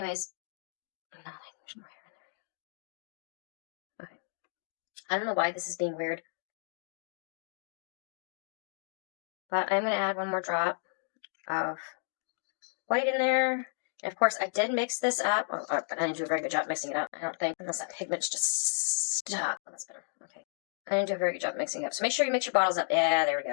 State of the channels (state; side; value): silent; right; digital silence